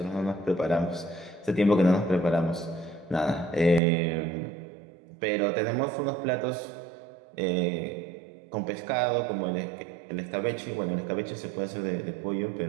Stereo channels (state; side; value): drops out; left; at 3.8 s